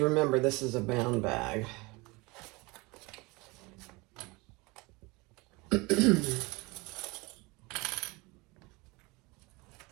remember, this is a bound bag.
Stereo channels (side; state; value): left; quieter; 25.0 dB